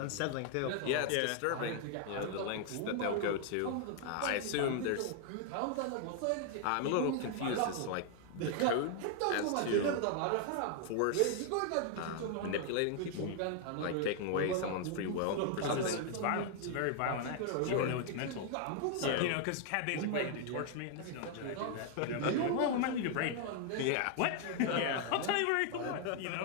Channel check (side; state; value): both; different; correlation 0.00